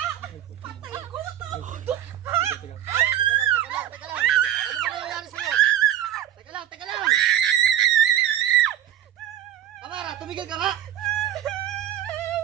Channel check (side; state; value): left; quieter; 11.6 dB